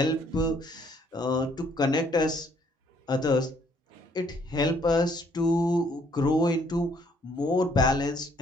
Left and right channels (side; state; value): both; normal; correlation 0.65